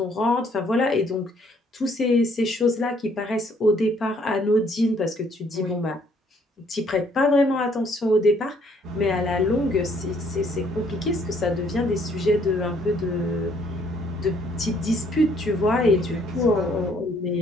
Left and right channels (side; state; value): both; normal; correlation 0.65